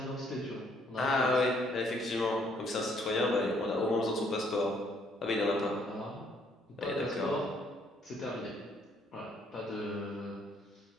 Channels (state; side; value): normal; both; correlation 0.66